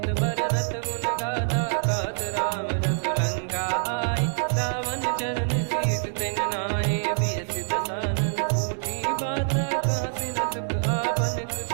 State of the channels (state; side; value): silent; left; digital silence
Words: बरनत गुण गाथा। कहत राम जसु लंका आए, रावण चरण शीस तिन नाये। बिहसि दसानन पूछी बाता, कहसि न सुख आपन